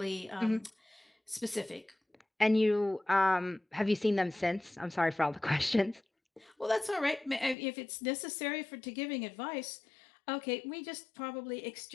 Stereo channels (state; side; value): drops out; right; at 7.6 s